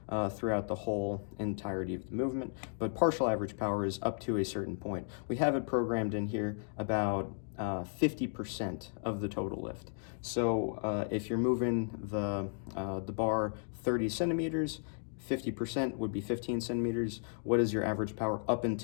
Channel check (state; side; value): silent; right; 55 dB below the other